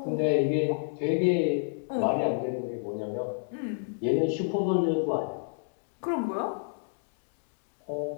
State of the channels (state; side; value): silent; right; digital silence